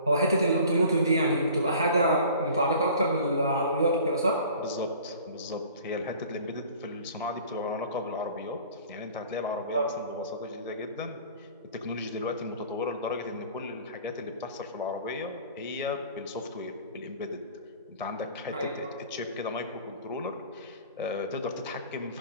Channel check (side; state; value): both; inverted; correlation -0.46